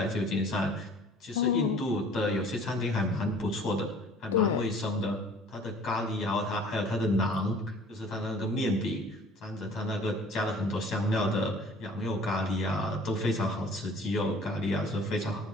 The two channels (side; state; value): both; normal; correlation 0.50